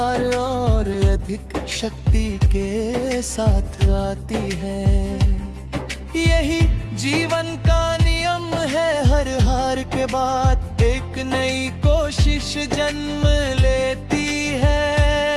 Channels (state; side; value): identical; both; correlation 1.00